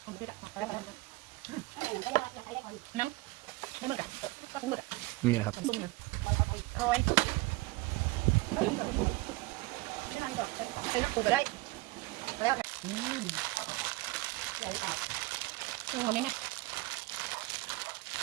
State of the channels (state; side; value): quieter; left; 21.5 dB